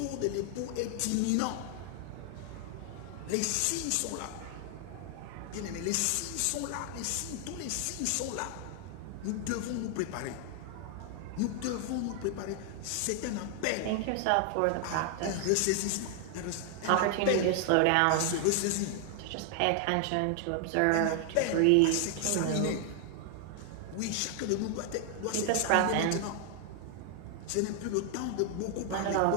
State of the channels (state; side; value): different; both; correlation 0.00